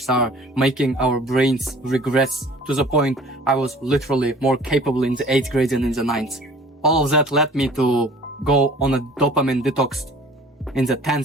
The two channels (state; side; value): normal; both; correlation 0.49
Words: are making our brains regress to the point I was literally more capable in the 8th grade than in the 9th. All of that led me to go on a dopamine detox in the